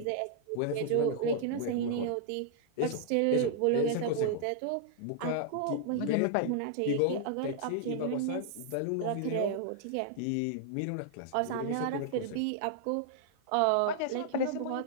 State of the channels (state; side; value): different; both; correlation -0.01